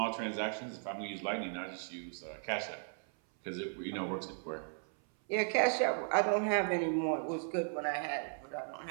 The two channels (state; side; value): silent; left; 53 dB below the other